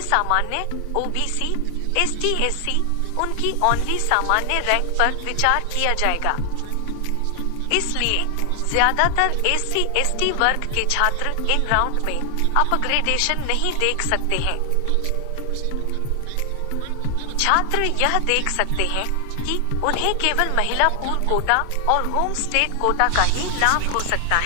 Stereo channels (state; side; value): different; both; correlation 0.00